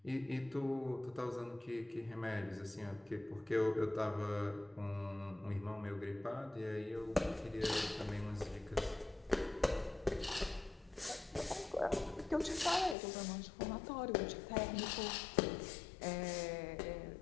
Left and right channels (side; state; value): right; drops out; at 13.0 s